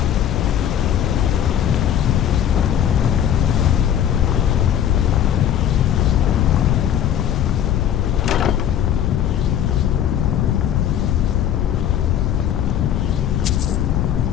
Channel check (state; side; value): quieter; right; 9.9 dB